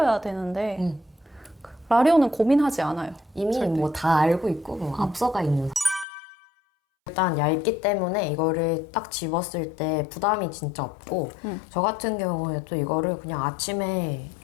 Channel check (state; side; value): drops out; right; at 6.1 s